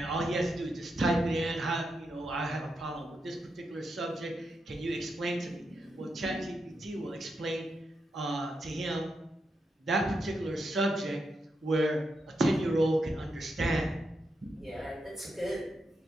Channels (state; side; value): normal; both; correlation 0.84